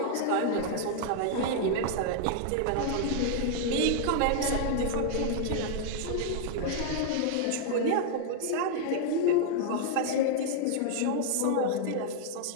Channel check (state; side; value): different; both; correlation 0.00